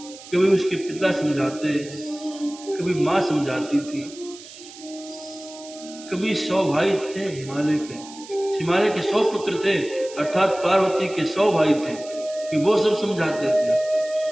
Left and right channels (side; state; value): right; noise; hiss, 17 dB below the sound